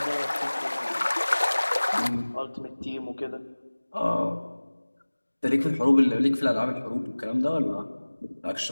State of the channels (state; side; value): inverted; both; correlation -1.00